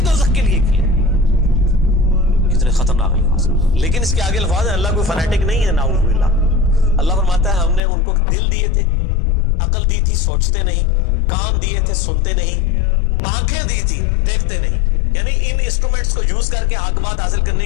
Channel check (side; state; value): right; drops out; at 7.8 s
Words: دوزخ کے لیے کیے۔ کتنے خطرناک الفاظ، لیکن اس کے آگے الفاظ ہیں اللہ کوئی فنیٹک نہیں ہے، نعوذ باللہ۔ اللہ فرماتا ہے ہم نے ان کو دل دیے تھے، عقل دی تھی سوچتے نہیں، کان دیے تھے سنتے نہیں، آنکھیں دی تھی دیکھتے نہیں، یعنی ان انسٹرومنٹس کو یوز کر کے حق بات حاصل